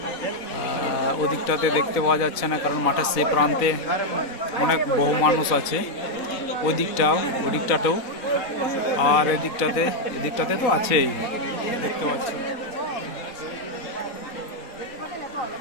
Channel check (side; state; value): right; late; 3.9 ms